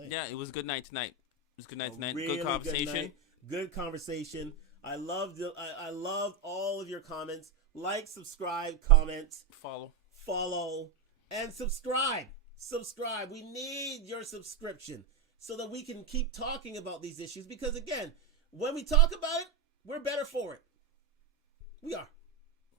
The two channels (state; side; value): quieter; left; 4.6 dB